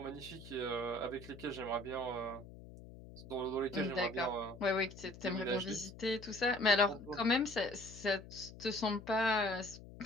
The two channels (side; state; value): left; noise; hum, 16 dB below the sound